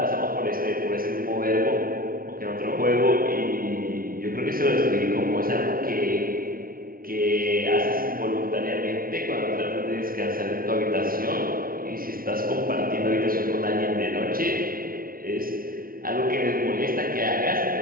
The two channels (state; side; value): late; left; 0.42 ms